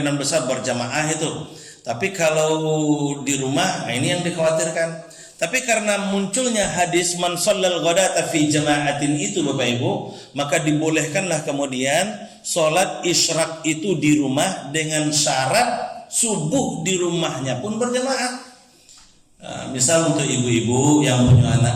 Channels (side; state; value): both; identical; correlation 1.00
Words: besar berjamaah itu. Tapi kalau di rumah, ini yang dikhawatirkan. Tapi karena munculnya hadis man shallal ghadata fi jama'atin itu Bapak Ibu, maka dibolehkanlah kemudian sholat isyraq itu di rumah dengan syarat subuh di rumahnya pun berjamaah. Misal untuk ibu-ibu yang punya